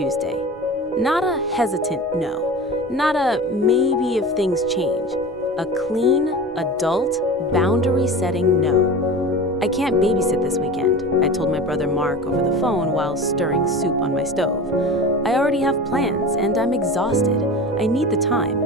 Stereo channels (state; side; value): normal; both; correlation 0.32